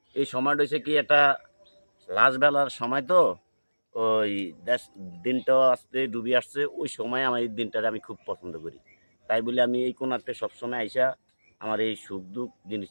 এই সময়টা হচ্ছে কি একটা লাস্ট বেলার সময়, তো ওই দেশ দিনটাও আসতে ডুবে আসছে, ওই সময় আমার এই দিনটারে আমি খুব পছন্দ করি। তাই বলে আমি এই কোণাতে সবসময় আইসা আমার এই সুখ দুঃখ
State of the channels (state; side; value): inverted; both; correlation -1.00